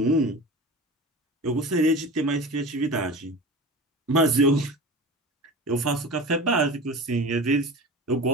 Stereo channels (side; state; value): both; normal; correlation 0.33